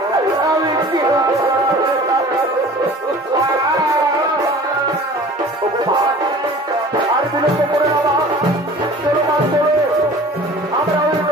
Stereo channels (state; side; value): normal; both; correlation 0.44